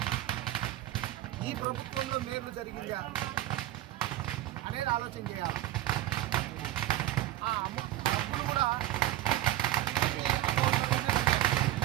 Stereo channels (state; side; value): quieter; left; 14.7 dB